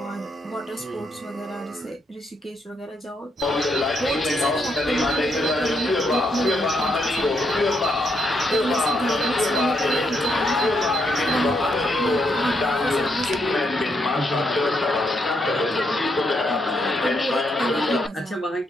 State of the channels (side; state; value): both; normal; correlation 0.77